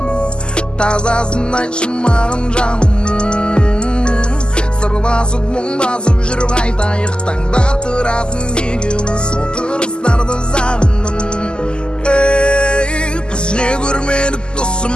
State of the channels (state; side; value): late; right; 0.047 ms